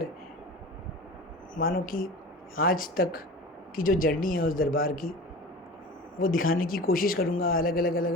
मानो कि आज तक की जो जर्नी है उस दरबार की, वो दिखाने की कोशिश करूँगा अलग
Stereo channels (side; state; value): both; normal; correlation 0.35